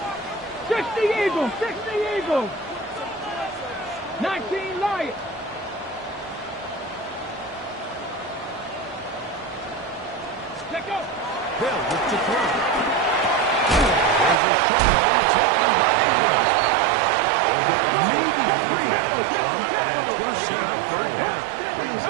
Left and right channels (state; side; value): drops out; left; at 14.4 s